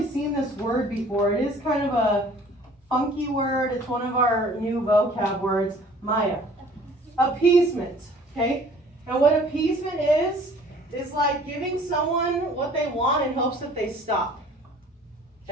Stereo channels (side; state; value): both; normal; correlation 0.52